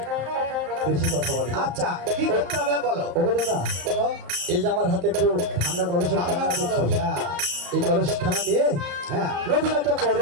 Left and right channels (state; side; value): late; left; 34 ms